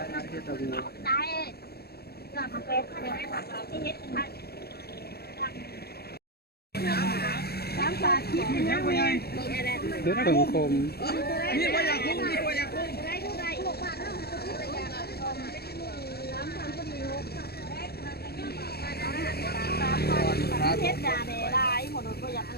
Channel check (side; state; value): right; late; 0.46 ms